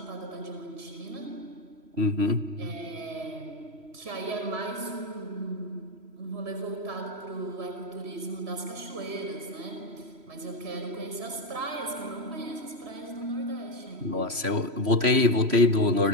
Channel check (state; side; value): late; left; 3.1 ms